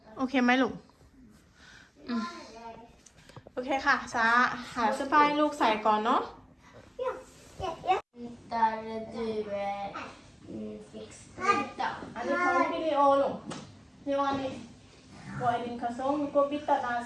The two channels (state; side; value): identical; both; correlation 1.00